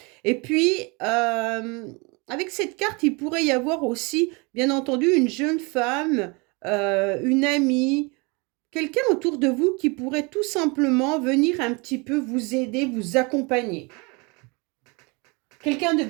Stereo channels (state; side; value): quieter; left; 29.0 dB